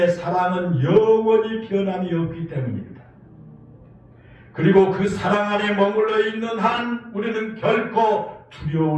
사랑은 영원히 변함이 없기 때문입니다. 그리고 그 사랑 안에 머물러 있는 한 우리는 결코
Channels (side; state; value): both; identical; correlation 1.00